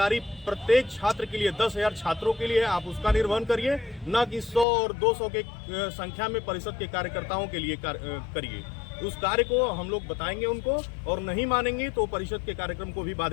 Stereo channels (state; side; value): drops out; right; at 4.7 s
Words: प्रत्येक छात्र के लिए 10,000 छात्रों के लिए है, आप उसका निर्वहन करिए। न कि 100 और 200 के संख्या में परिषद के कार्यकर्ताओं के लिए करिए। उस कार्य को हम लोग बताएंगे उनको, और नहीं मानेंगे तो परिषद के कार्यक्रम को भी